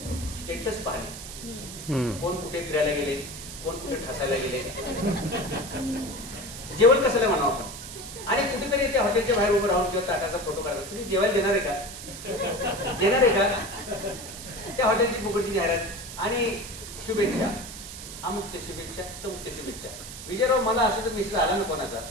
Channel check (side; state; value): right; noise; hiss, 11 dB below the sound